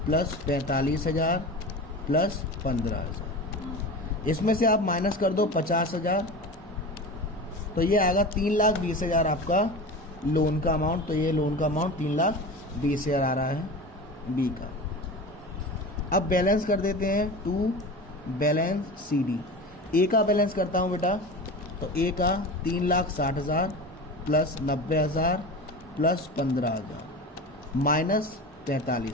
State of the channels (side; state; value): both; normal; correlation 0.30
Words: प्लस 45,000 प्लस 15,000। इसमें से आप माइनस कर दो 50,000, तो ये आएगा 3,20,000 आपका लोन का अमाउंट। तो ये लोन का अमाउंट 3,20,000 आ रहा है बी का। अब बैलेंस कर देते हैं, टू बैलेंस सी डी। ए का बैलेंस करता हूँ बेटा, तो ए का 3,60,000 प्लस 90,000 प्लस 15,000,